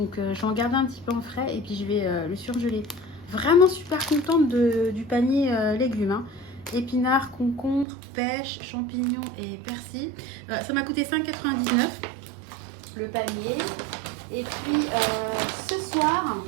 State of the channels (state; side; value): drops out; left; at 7.9 s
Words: je vais en garder un petit peu en frais et puis je vais le surgeler. Vraiment super contente du panier légumes. Hein. Épinards, concombres, pêche, champignons et persil. Ça m'a coûté 5,99 € le panier. Et puis, ce soir,